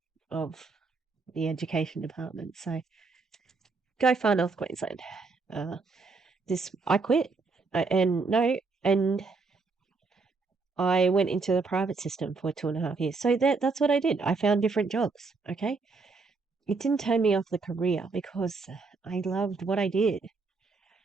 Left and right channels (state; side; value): quieter; left; 4.2 dB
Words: of the education department. So go far north Queensland. Uh, I quit. And I went into the private system for 2.5 years. So that's what I did. I found different jobs. Okay. It didn't turn me off the career because I loved what I did.